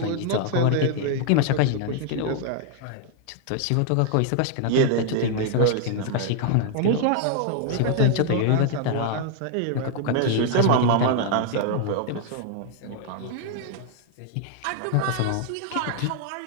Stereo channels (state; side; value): different; both; correlation 0.00